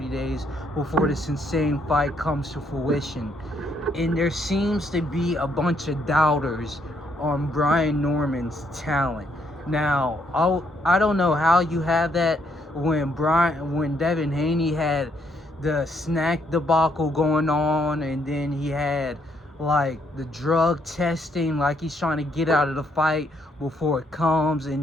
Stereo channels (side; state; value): both; normal; correlation 0.72